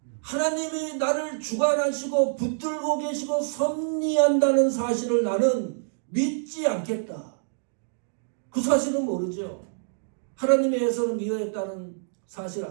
하나님이 나를 주관하시고 붙들고 계시고 섭리한다는 사실을 나는 믿지 않겠다. 그 사실은 모르죠. 하나님의 예서는 미워했다는 사실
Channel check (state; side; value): silent; left; digital silence